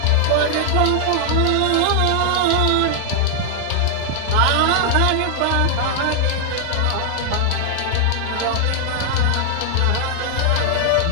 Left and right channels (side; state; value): both; different; correlation -0.01